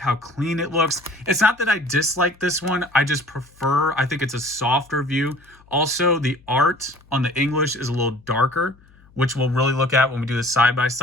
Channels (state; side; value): noise; left; hum, 28 dB below the sound